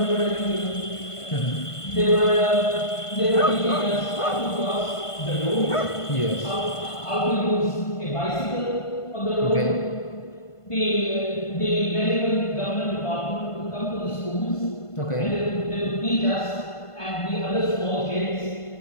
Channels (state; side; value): late; right; 1.5 ms